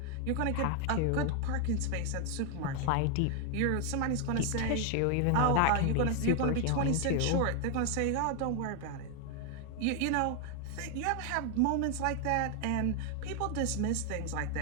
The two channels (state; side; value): different; both; correlation 0.00